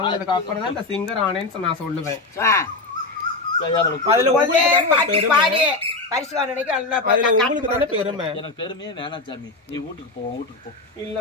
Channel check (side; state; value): right; quieter; 3.3 dB